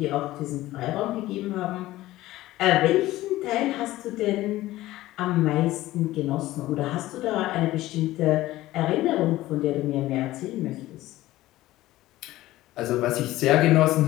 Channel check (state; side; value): quieter; right; 16.4 dB